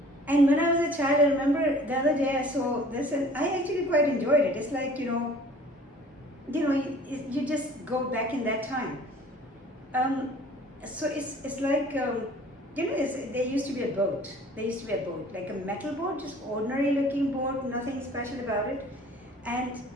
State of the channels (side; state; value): both; normal; correlation 0.50